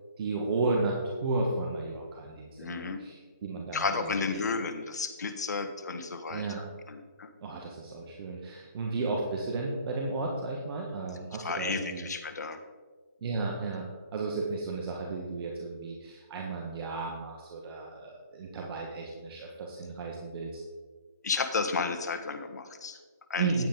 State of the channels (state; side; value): inverted; both; correlation -0.47